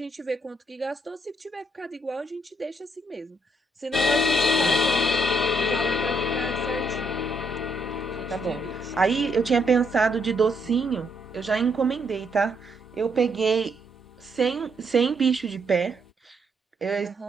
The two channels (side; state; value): both; normal; correlation 0.74